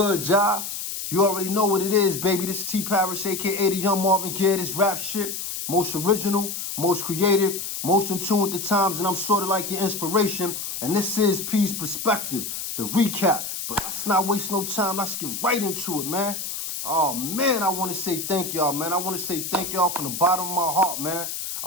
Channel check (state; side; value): noise; left; hiss, 5 dB below the sound